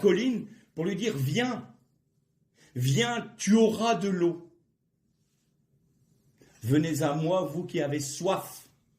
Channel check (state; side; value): identical; both; correlation 1.00